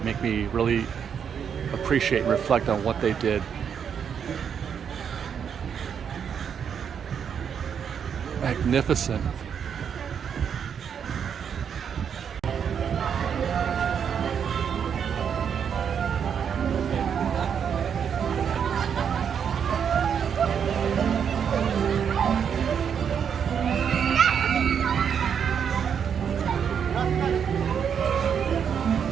make me really appreciate and reflect on what they did. Magnificent.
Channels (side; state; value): left; quieter; 7.6 dB